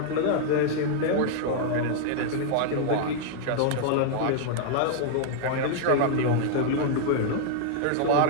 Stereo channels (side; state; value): both; different; correlation -0.01